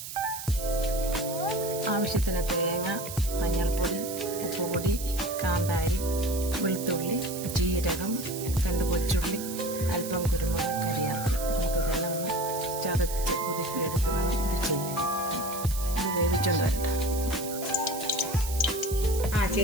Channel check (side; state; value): right; noise; hiss, 9 dB below the sound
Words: ആവശ്യത്തിന് തേങ്ങ, മഞ്ഞൾപ്പൊടി, ഉപ്പുപൊടി, കാന്താരി, വെളുത്തുള്ളി, ജീരകം, 2 കൊച്ചുള്ളി, അല്പം കുരുമുളക്, കരിയാപ്പില. നമുക്കിതെല്ലാം ഒന്ന് ചതച്ച് കുതിർത്തിയെടുക്കണം. ഇത് ചെയ്യാം. ഇത് വേവിച്ചുകൊണ്ട് വരട്ടെ.